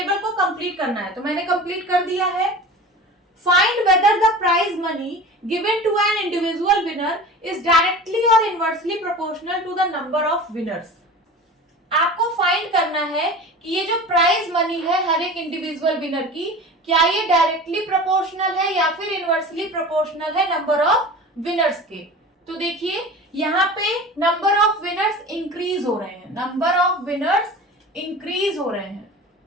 को कंप्लीट करना है, तो मैंने कंप्लीट कर दिया है। Find whether the prize money given to an individual winner is directly और inversely proportional to the number of winners. आपको फाइंड करना है कि ये जो प्राइज मनी है हर एक इंडिविजुअल विनर की, क्या ये डायरेक्टली प्रोपोर्शनल है या फिर इनवर्सली प्रोपोर्शनल है नंबर ऑफ विनर्स के। तो देखिए यहाँ पे नंबर ऑफ विनर्स इंक्रीज हो रहे हैं, नंबर ऑफ विनर्स इंक्रीज हो रहे हैं,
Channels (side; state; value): both; normal; correlation 0.36